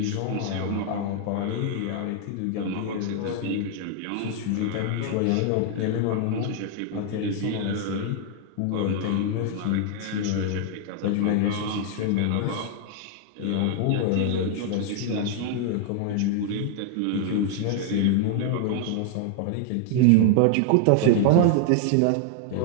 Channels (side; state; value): both; different; correlation 0.00